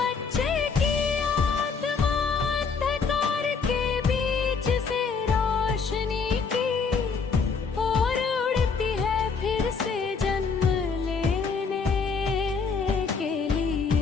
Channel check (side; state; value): right; quieter; 5.3 dB